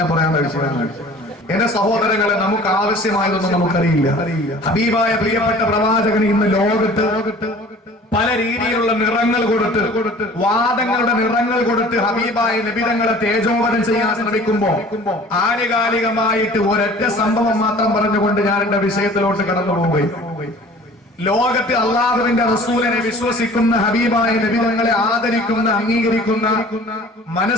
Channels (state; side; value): normal; both; correlation 0.47